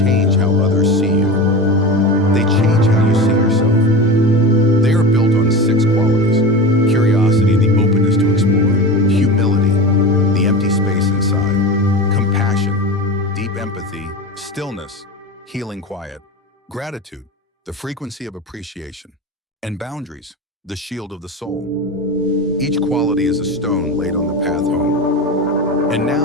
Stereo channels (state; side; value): normal; both; correlation 0.27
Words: how others see you. They change how you see yourself. They are built on 6 qualities: curiosity, the openness to explore; humility, the empty space inside; compassion, deep empathy; stillness, healing quiet; gratitude, the frequency of appreciation; and boundaries, the shield of the soul. Each quality is a stone laid on the path home. And